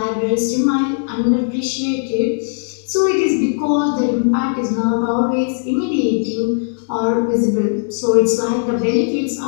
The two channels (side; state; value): right; silent; digital silence